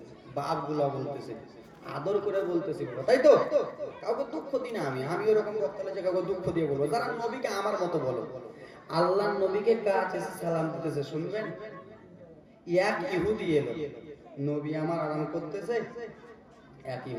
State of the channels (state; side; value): identical; both; correlation 1.00